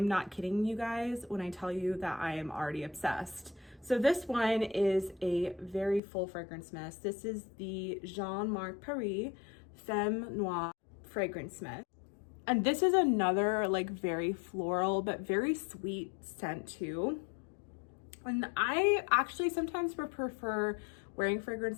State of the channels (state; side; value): drops out; right; at 6.0 s